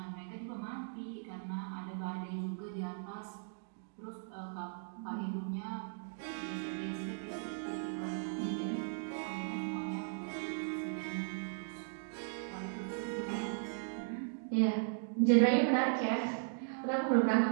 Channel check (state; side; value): silent; left; digital silence